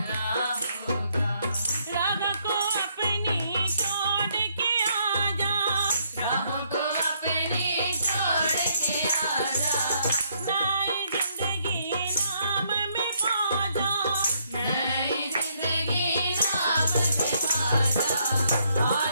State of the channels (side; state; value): both; inverted; correlation -0.71